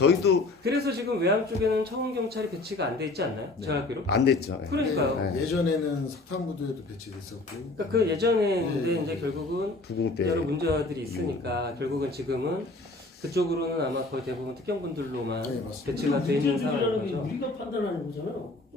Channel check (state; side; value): quieter; right; 3.1 dB